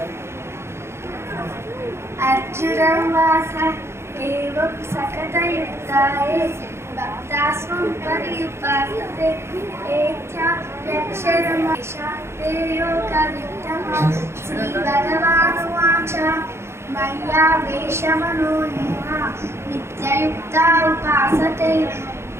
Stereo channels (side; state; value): left; late; 0.13 ms